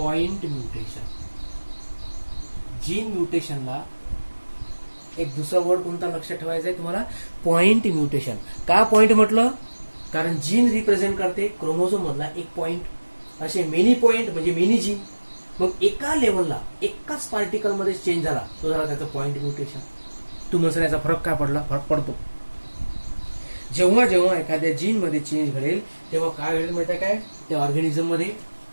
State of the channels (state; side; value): inverted; both; correlation -1.00